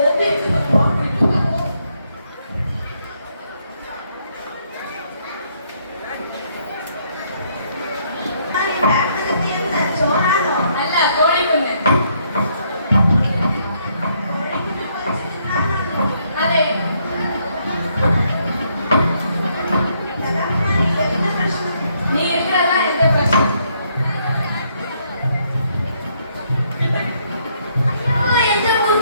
അല്ല, കോഴിക്കുഞ്ഞ്. അതെ. നീ ഇരിക്കണതാ എന്റെ പ്രശ്നം. അയ്യോ, എന്റെ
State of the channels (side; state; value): both; inverted; correlation -0.72